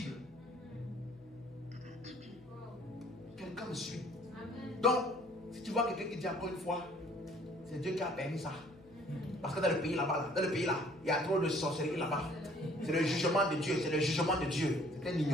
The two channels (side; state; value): left; noise; hum, 25 dB below the sound